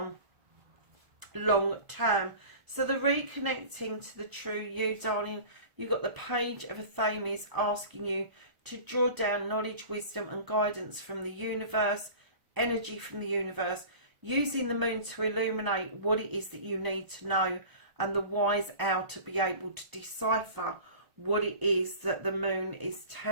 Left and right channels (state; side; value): late; left; 1.0 ms